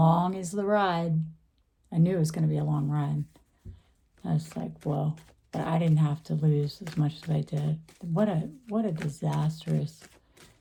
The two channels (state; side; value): identical; both; correlation 1.00